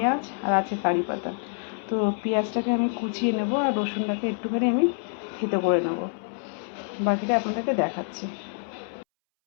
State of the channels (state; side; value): silent; right; 61 dB below the other